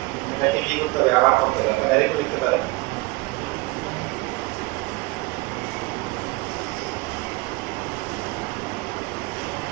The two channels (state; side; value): quieter; left; 23.7 dB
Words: এটাকে কি করতে হবে, আবার করতে হবে। আপনারা ডাইরেক্ট লিখতে পারেন,